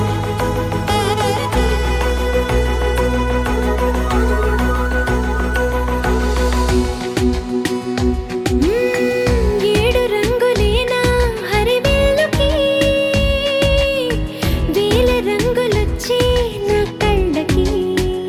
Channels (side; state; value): both; identical; correlation 1.00